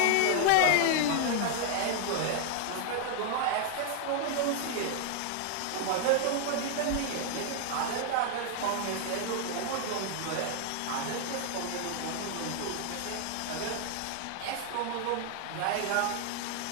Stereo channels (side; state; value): both; different; correlation 0.00